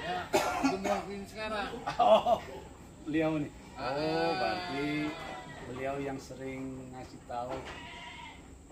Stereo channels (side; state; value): both; identical; correlation 1.00